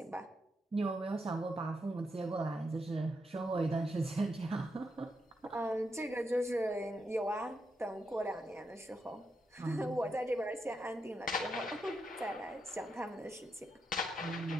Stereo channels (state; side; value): normal; both; correlation 0.83